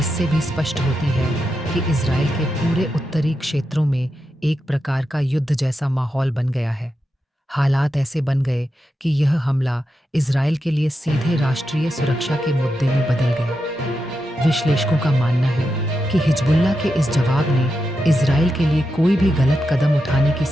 भी स्पष्ट होती है कि इजराइल के पूरे उत्तरी क्षेत्रों में एक प्रकार का युद्ध जैसा माहौल बन गया है। हालात ऐसे बन गए कि यह हमला इजराइल के लिए सीधे राष्ट्रीय सुरक्षा के मुद्दे में बदल गया। विश्लेषकों का मानना है कि हिजबुल्लाह के इस जवाब ने इजराइल के लिए कोई भी गलत कदम उठाने की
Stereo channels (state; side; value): normal; both; correlation 0.87